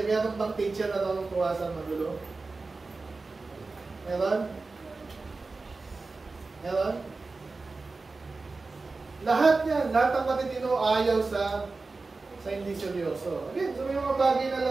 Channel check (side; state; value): left; quieter; 3.8 dB